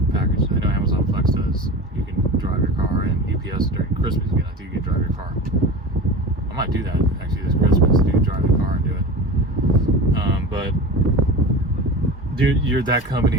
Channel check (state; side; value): normal; both; correlation 0.32